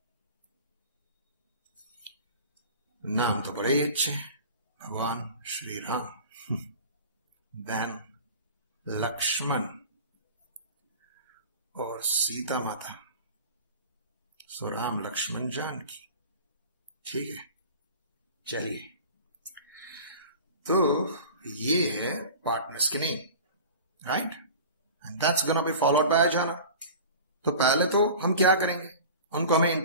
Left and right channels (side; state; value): both; inverted; correlation -0.38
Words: नाम तो बड़े ही अच्छे, भगवान श्री राम, देन लक्ष्मण और सीता माता, सो राम लक्ष्मण जानकी। ठीक है, चलिए, तो ये है पार्टनर्स के name, right, and that's gonna be followed by a journal. तो पहले तो हम क्या करेंगे, उनको हमें